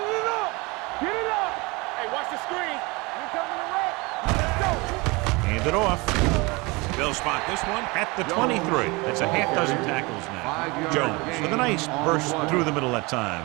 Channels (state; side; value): quieter; left; 25.7 dB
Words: it up. Get it up. Hey, watch the screen. We coming to right. Let's go. Hand it off. They'll spot this one at the 23. That's a half dozen tackles now. Jones with a nice burst through the middle that time.